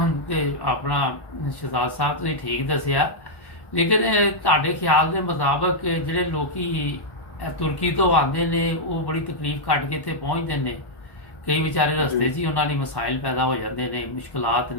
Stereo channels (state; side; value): late; right; 1.1 ms